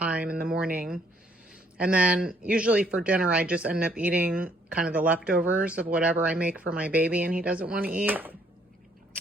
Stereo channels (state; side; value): normal; both; correlation 0.65